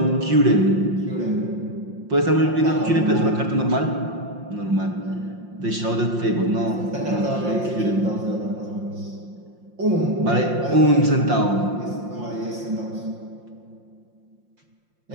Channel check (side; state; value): left; late; 5.7 ms